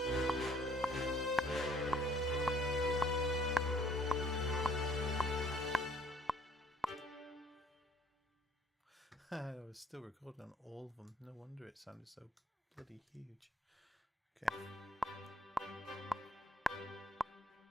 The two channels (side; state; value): both; normal; correlation 0.61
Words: I was still recording on all of them. No wonder it sounded so bloody huge. Okay.